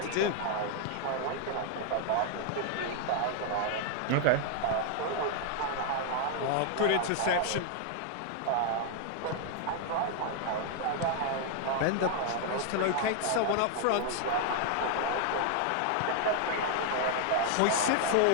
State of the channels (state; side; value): different; both; correlation 0.00